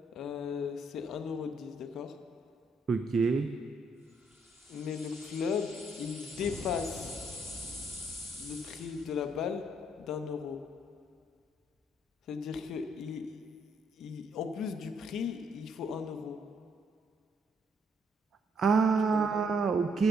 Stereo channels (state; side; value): normal; both; correlation 0.71